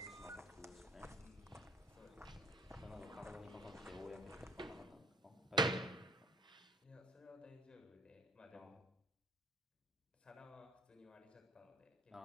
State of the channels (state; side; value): normal; both; correlation 0.56